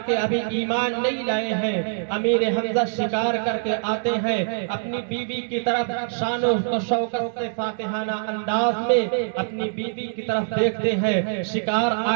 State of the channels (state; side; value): silent; left; digital silence